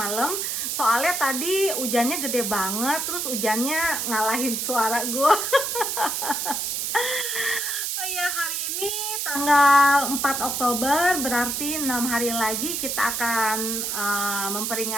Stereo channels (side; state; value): right; noise; hiss, 1 dB below the sound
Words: Soalnya tadi hujannya gede banget, terus hujannya ngalahin suara gue. Oh iya, hari ini tanggal 4 Oktober, berarti 6 hari lagi kita akan